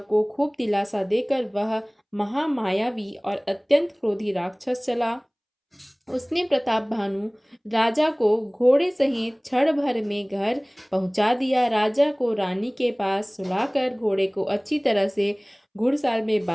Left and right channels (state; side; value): identical; both; correlation 1.00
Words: को खूब दिलासा देकर वह महामायावी और अत्यंत क्रोधी राक्षस चला। उसने प्रताप भानु राजा को घोड़े सहित क्षण भर में घर पहुंचा दिया। राजा को रानी के पास सुलाकर घोड़े को अच्छी तरह से घुड़साल में